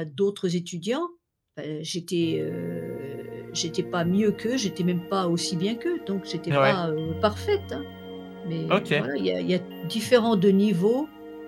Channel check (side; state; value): both; identical; correlation 1.00